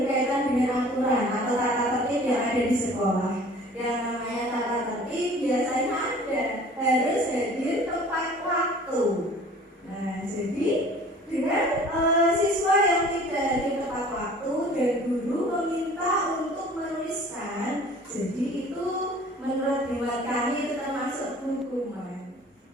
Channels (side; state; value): both; normal; correlation 0.48